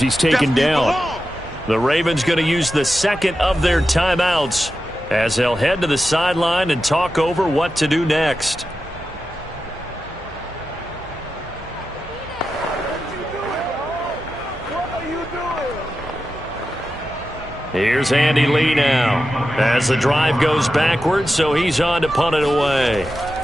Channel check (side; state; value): right; noise; hum, 22 dB below the sound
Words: he's taken down. The Ravens going to use the 2nd of their timeouts as they'll head to the sideline and talk over what to do next. Here's Andy Lee now as the drive goes backwards, so he's on to punt it away.